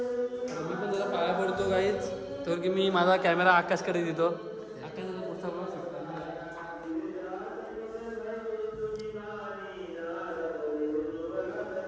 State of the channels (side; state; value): both; identical; correlation 1.00